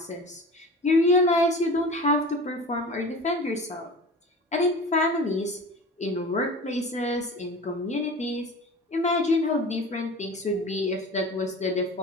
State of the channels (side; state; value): both; normal; correlation 0.36